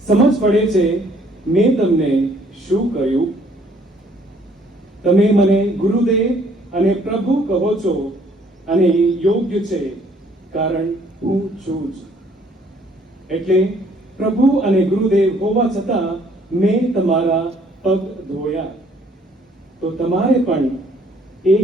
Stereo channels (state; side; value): normal; both; correlation 0.62